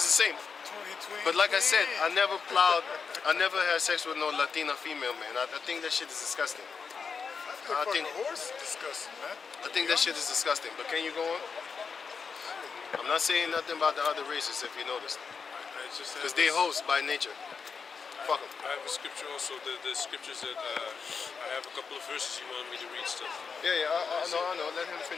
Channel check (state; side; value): quieter; right; 5.6 dB